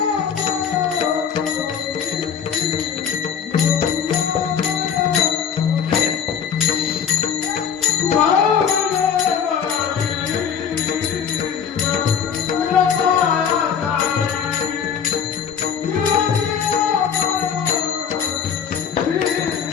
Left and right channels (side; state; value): right; quieter; 7.5 dB